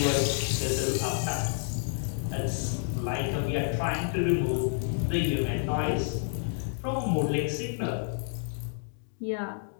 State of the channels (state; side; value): silent; right; digital silence